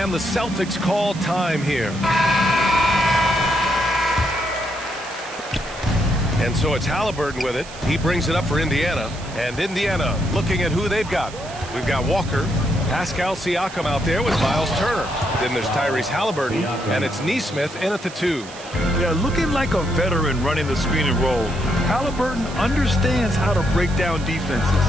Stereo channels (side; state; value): right; noise; hiss, 16 dB below the sound